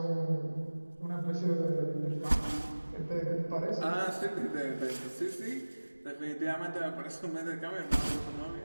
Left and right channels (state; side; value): inverted; both; correlation -1.00